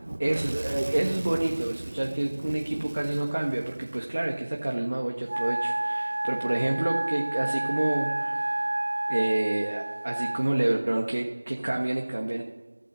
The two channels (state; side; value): inverted; both; correlation -1.00